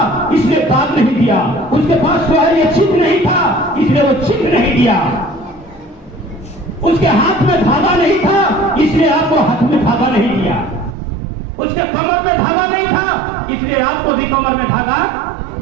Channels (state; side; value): drops out; left; at 11.0 s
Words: इसलिए दाग नहीं दिया, उसके पास जो है ये चिन्ह नहीं था इसलिए वो चिन्ह नहीं दिया, उसके हाथ में धागा नहीं था इसलिए आपको हाथ में धागा नहीं दिया, उसके कमर में धागा नहीं था इसलिए आपको भी कमर में धागा